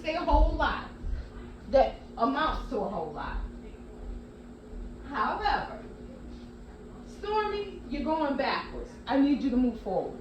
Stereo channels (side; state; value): both; identical; correlation 1.00